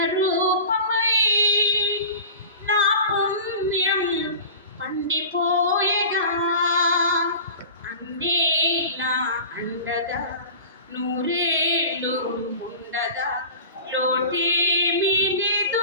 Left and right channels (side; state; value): both; inverted; correlation -0.35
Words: రూపమై నా పుణ్యం పండిపోయగా అన్నీ నా అండగా నూరేళ్ళు ఉండగా లోటేమీ